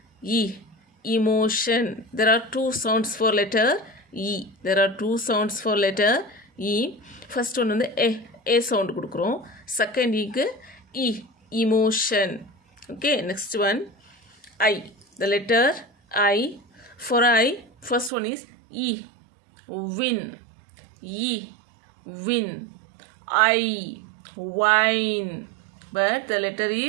Emotion. There are 2 sounds for letter E. First one வந்து a sound கொடுக்குறோம். Second க்கு emotion. Okay, next one I. The letter I. For I, first one is win. Win. Wine. But the letter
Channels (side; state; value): left; drops out; at 18.1 s